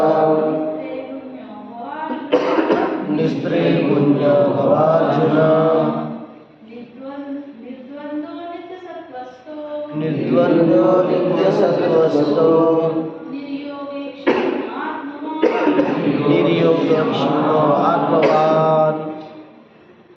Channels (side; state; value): both; identical; correlation 1.00